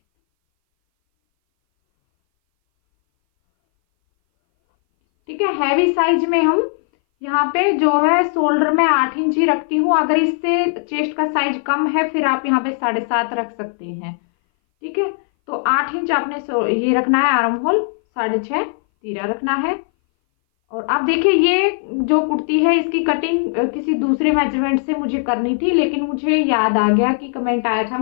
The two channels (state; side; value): silent; right; 60 dB below the other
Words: ठीक है, हैवी साइज में हम यहाँ पे जो है शोल्डर में 8 इंच ही रखती हूँ। अगर इससे चेस्ट का साइज कम है फिर आप यहाँ पे 7.5 रख सकते हैं। ठीक है, तो 8 इंच आपने ये रखना है आर्म होल, 6.5 तीरा रखना है। और आप देखिए, ये जो कुर्ती है इसकी कटिंग किसी दूसरे मेजरमेंट से मुझे करनी थी, लेकिन मुझे याद आ गया कि कमेंट आया था